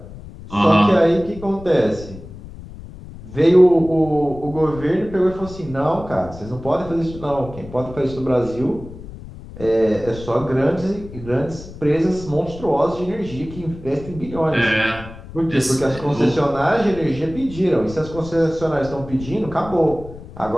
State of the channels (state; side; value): noise; left; rumble, 15 dB below the sound